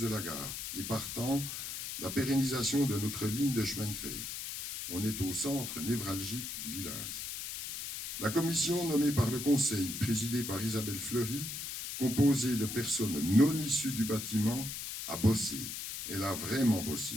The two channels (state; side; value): noise; left; hiss, 6 dB below the sound